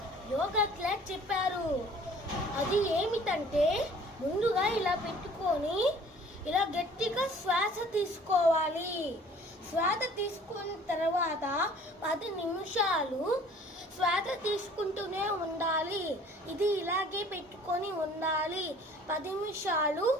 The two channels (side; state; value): both; normal; correlation 0.52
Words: యోగా క్లాస్ చెప్పారు. అది ఏమిటంటే ముందుగా ఇలా పెట్టుకొని ఇలా గట్టిగా శ్వాస తీసుకోవాలి. శ్వాస తీసుకున్న తర్వాత 10 నిమిషాలు శ్వాస తీసుకుంటూనే ఉండాలి. ఇది ఇలాగే పెట్టుకొని ఉండాలి. 10 నిమిషాలు